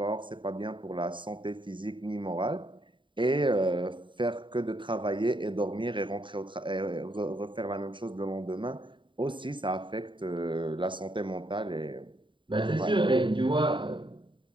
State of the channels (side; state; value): left; late; 0.24 ms